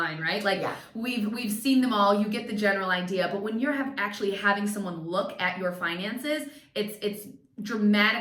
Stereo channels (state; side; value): identical; both; correlation 1.00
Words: right? We've seen them all. You get the general idea. But when you're actually having someone look at your finances, it's